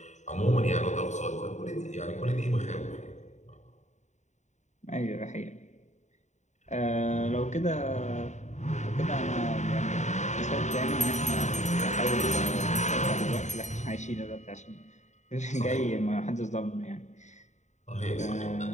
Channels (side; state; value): right; late; 0.34 ms